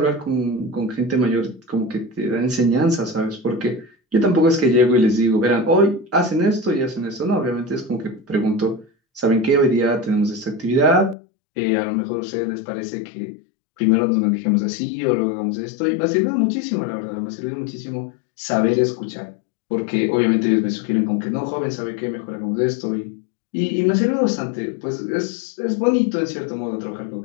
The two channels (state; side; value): drops out; right; at 11.2 s